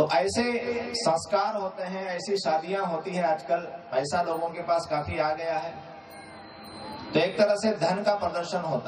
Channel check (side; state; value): both; identical; correlation 1.00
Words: ऐसे संस्कार होते हैं, ऐसी शादियां होती है। आजकल पैसा लोगों के पास काफी आ गया है, तो एक तरह से धन का प्रदर्शन